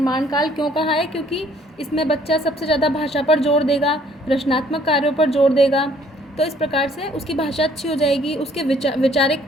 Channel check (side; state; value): both; normal; correlation 0.60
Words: काल क्यों कहा है? क्योंकि इसमें बच्चा सबसे ज़्यादा भाषा पर जोर देगा, रचनात्मक कार्यों पर जोर देगा। तो इस प्रकार से उसकी भाषा अच्छी हो जाएगी, उसके